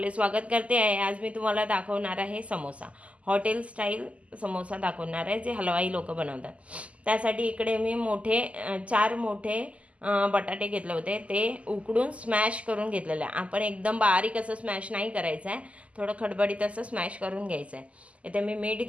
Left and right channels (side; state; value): left; late; 0.065 ms